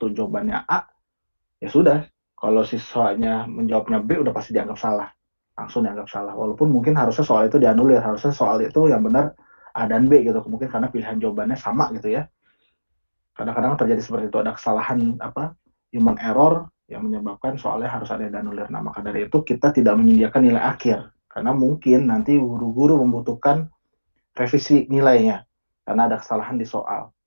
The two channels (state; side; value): inverted; both; correlation -1.00